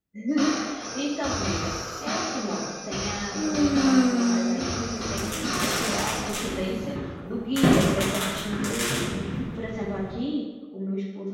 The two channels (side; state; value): both; identical; correlation 1.00